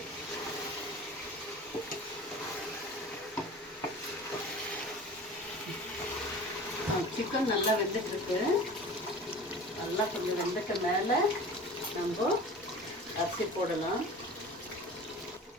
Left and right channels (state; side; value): normal; both; correlation 0.39